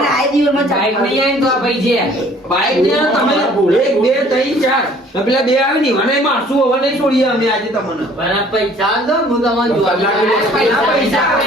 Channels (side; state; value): both; normal; correlation 0.55